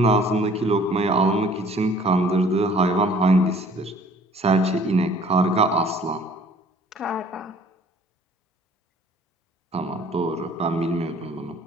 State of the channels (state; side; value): normal; both; correlation 0.54